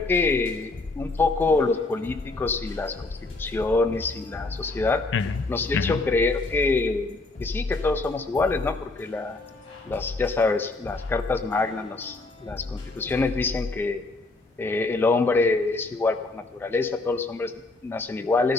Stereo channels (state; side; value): quieter; right; 3.2 dB